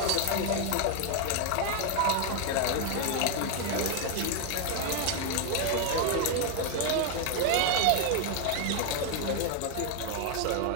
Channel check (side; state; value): both; different; correlation 0.01